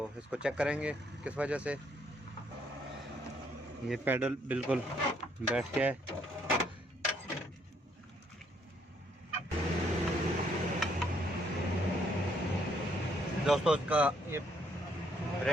इसको चेक करेंगे किस वजह से। ये पैडल बिल्कुल बैठ गया है। दोस्तों इसका ये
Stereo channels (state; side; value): normal; both; correlation 0.69